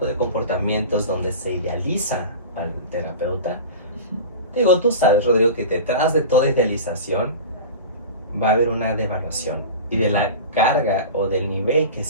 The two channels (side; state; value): both; inverted; correlation -0.32